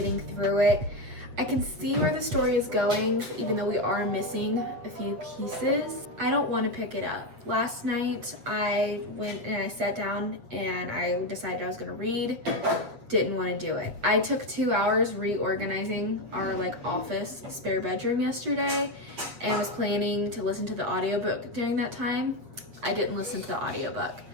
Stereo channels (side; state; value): left; late; 7.8 ms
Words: through it. I can see where the story is going, even though we are missing a few pieces. I don't want to pick it up. Last night I went and I sat down and I decided I was going to read. Didn't want to do it. I took 2 hours reorganizing our office spare bedroom yesterday and was planning to listen to the audiobook during that time. I didn't listen to the audiobook.